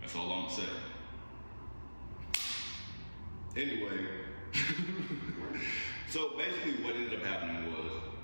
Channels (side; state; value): both; inverted; correlation -1.00